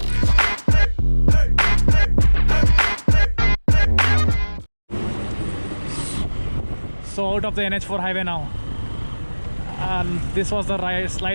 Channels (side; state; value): both; inverted; correlation -1.00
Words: So out of the NH4 highway now, and this was the